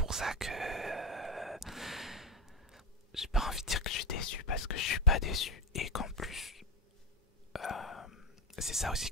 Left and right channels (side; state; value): both; normal; correlation 0.11